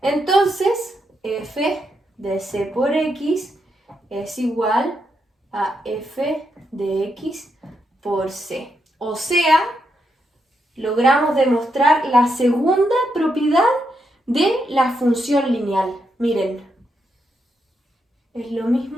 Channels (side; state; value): both; normal; correlation 0.81